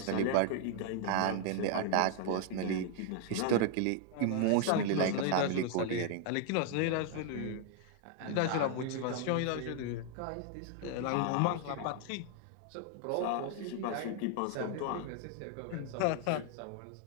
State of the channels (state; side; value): different; both; correlation 0.00